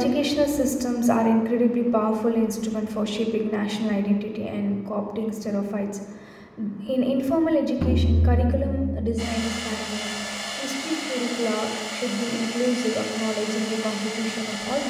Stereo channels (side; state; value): both; identical; correlation 1.00